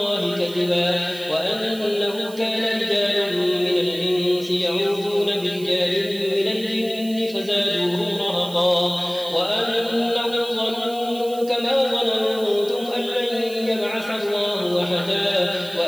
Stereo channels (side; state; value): right; noise; hiss, 19 dB below the sound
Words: كذبا وأنه كان رجال من الإنس يعوذون برجال من الجن فزادوهم رهقا وأنهم ظنوا كما ظننتم أن لن يبعث الله أحدا